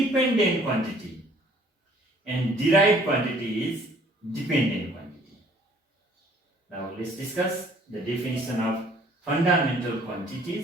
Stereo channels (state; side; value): normal; both; correlation 0.57